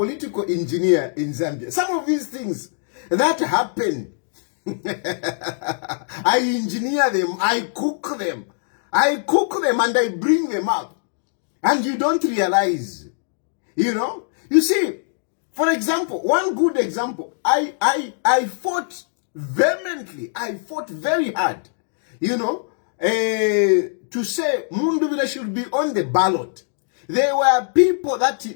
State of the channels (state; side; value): silent; right; digital silence